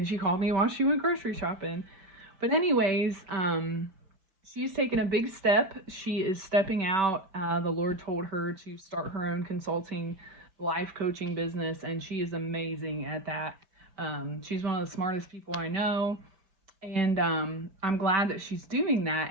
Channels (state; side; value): late; left; 5.1 ms